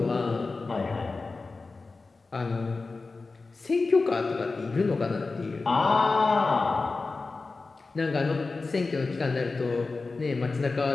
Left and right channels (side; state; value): right; quieter; 3.8 dB